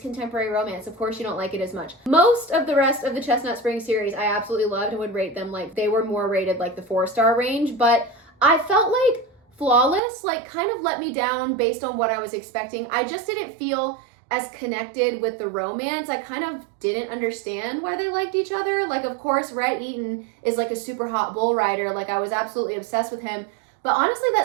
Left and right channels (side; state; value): left; drops out; at 10.0 s